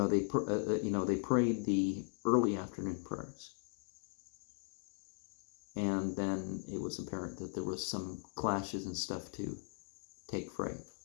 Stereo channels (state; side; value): silent; right; 52 dB below the other